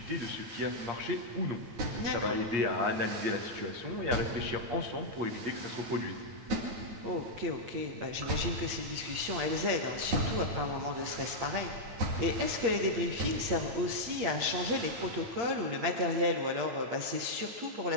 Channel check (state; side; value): late; left; 8.6 ms